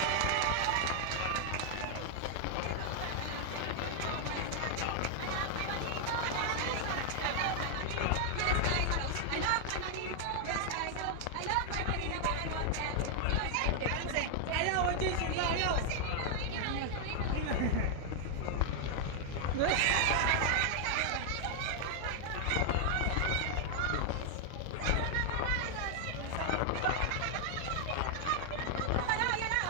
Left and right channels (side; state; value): both; different; correlation 0.00